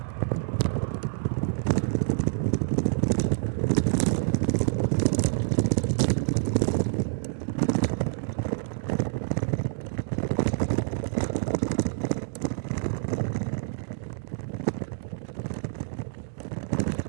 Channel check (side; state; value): left; silent; digital silence